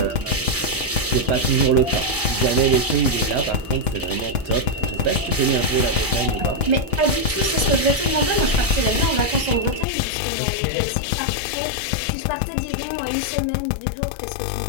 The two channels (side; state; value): right; drops out; at 9.9 s